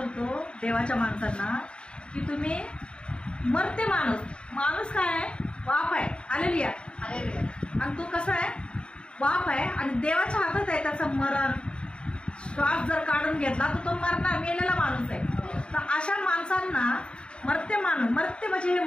देवाच्या माणसांना की तुम्ही मर्त्य माणूस काय आहे? वाप आहे. हालेलुया. आणि तो कसा आहे? वाप आहे आणि देवाच्या हातात आहे त्याचं मरण. श्वास जर काढून घेतला तर तो मरणार, मेलेला माणूस आहे. तर अशा माणसांना मर्त्य म्हणजे हे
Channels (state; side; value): late; right; 0.053 ms